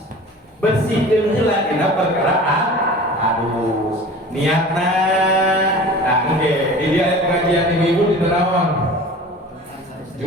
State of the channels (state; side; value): normal; both; correlation 0.40